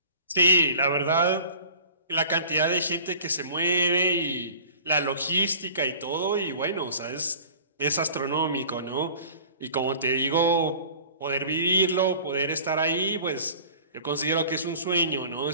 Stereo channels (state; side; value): inverted; both; correlation -0.45